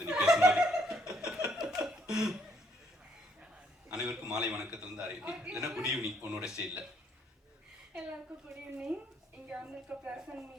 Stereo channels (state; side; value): normal; both; correlation 0.69